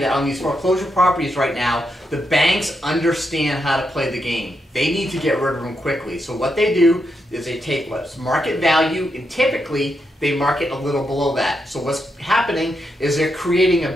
that on these foreclosure properties right now, the banks understand how to play the game. They need to get rid of them quickly. So what they do is they take what's market value, and typically they market a little below that. So what's happening is they're creating a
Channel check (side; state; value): both; normal; correlation 0.83